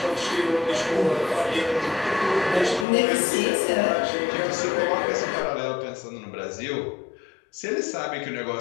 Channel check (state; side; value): drops out; right; at 2.9 s